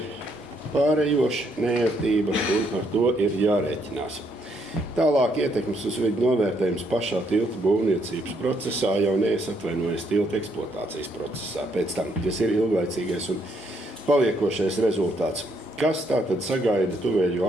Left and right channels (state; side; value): normal; both; correlation 0.72